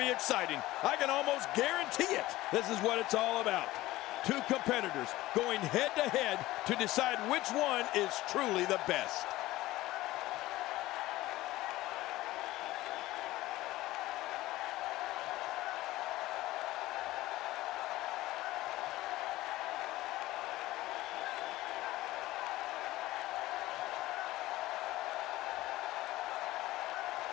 be exciting. I can almost guarantee it. This is what it's all about. Two competitors going head-to-head to decide which one is truly the best.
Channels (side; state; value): right; quieter; 17.3 dB